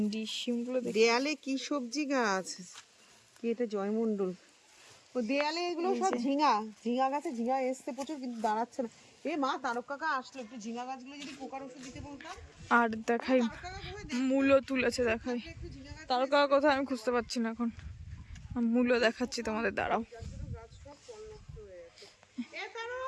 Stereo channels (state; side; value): identical; both; correlation 1.00